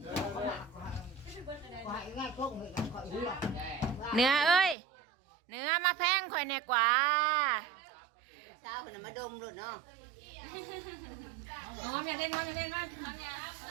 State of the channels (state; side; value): drops out; left; at 4.8 s